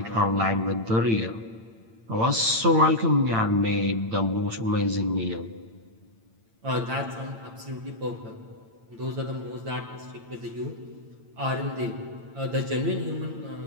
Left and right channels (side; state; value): left; late; 8.9 ms